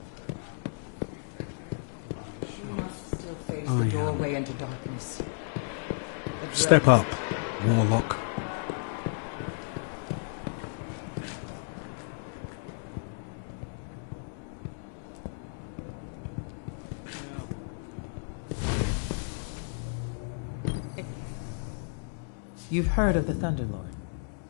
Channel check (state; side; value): silent; right; digital silence